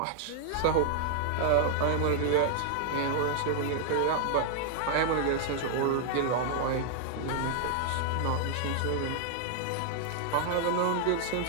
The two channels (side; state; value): both; different; correlation 0.00